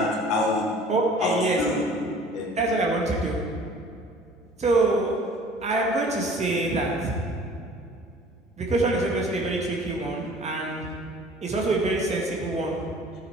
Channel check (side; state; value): both; normal; correlation 0.49